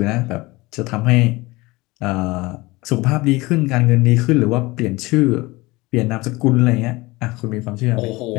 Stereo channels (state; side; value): quieter; right; 21.9 dB